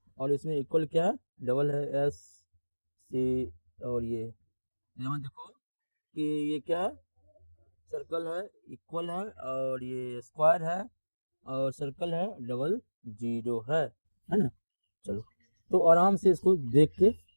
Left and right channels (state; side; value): inverted; both; correlation -1.00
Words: और इसमें इक्वल क्या है? डबल है, एस सी। और ये यहाँ देखो कि ये क्या है? सर्कल है, इक्वल है, और ये स्क्वायर है, और सर्कल है, डबल जीरो है ना। चलो, तो आराम से इसको देख के,